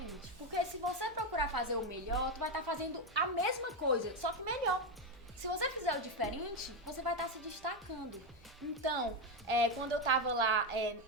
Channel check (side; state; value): both; normal; correlation 0.08